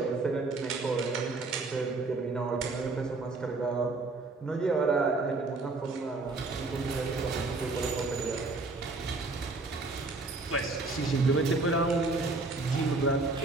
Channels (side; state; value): left; quieter; 3.5 dB